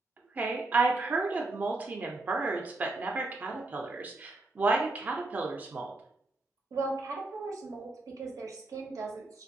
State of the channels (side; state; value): left; quieter; 3.1 dB